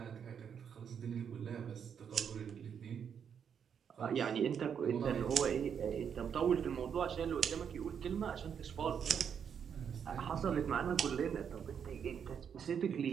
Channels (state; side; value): quieter; left; 7.6 dB